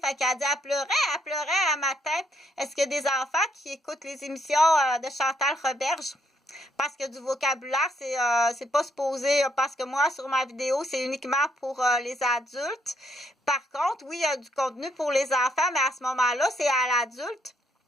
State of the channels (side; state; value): both; normal; correlation 0.72